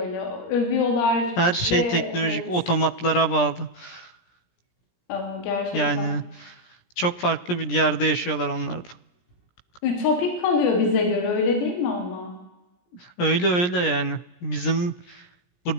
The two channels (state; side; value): late; right; 17 ms